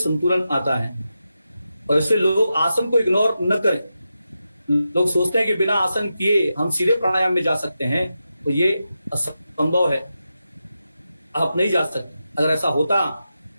आता है। और इससे लोग आसन को इग्नोर न करें। लोग सोचते हैं कि बिना आसन किए हम सीधे प्राणायाम में जा सकते हैं, तो ये असंभव है, आप नहीं जा सकते। अगर ऐसा होता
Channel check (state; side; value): inverted; both; correlation -0.89